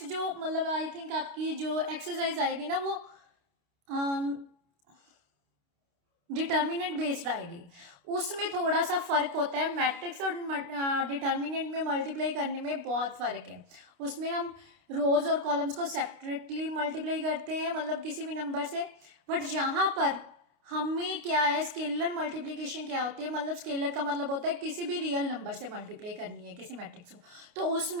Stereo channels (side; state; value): left; late; 29 ms